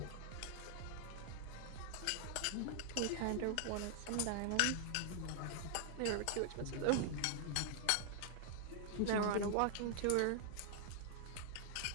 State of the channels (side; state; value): both; different; correlation 0.00